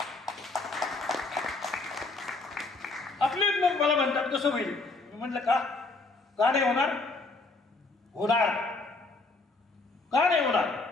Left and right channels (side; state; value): right; quieter; 3.5 dB